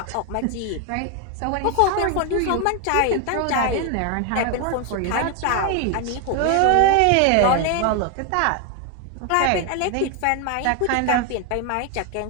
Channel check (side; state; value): both; different; correlation 0.01